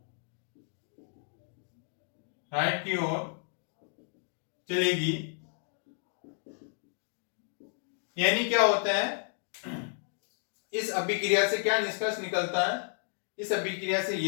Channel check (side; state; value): right; silent; 56 dB below the other